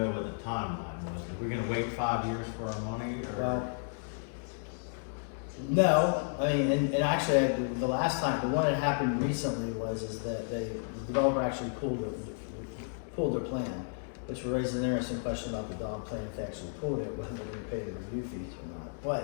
what the timeline was. Are we gonna wait 5 years for our money, or? Well, no, I mean, and actually, the last time, the one that happened recently is that the developer actually pulled their plan, which raised an interesting question about the dog plan, if they actually pulled it, whether they're gonna pay the review fees or not.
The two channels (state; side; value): silent; right; digital silence